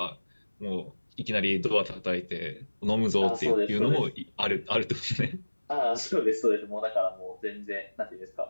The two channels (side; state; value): both; inverted; correlation -1.00